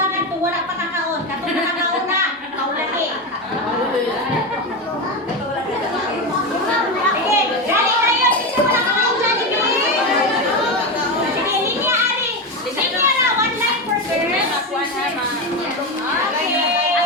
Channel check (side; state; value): both; normal; correlation 0.16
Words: to wala pa kakaon. Katong nakakaon na. Kaulahi. Sige, dali kayo. Isa wala kakaon Jollibee. Sige, linya ari. Linya na, one line per girl.